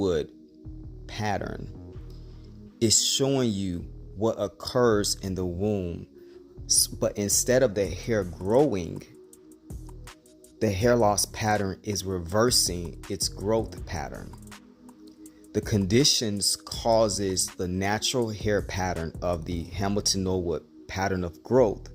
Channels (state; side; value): identical; both; correlation 1.00